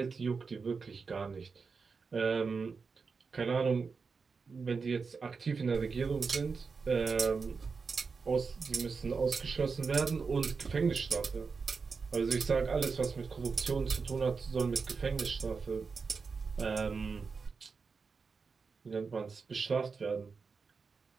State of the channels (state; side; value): quieter; left; 5.0 dB